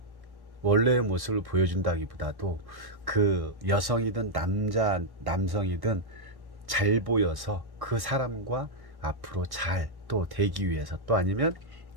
보여준다기보다도 그 여성이든 남성이든 잘 보여서 그 사람과 앞으로 잘 또 되기 위해서, 또 아니면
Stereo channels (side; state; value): left; late; 1.1 ms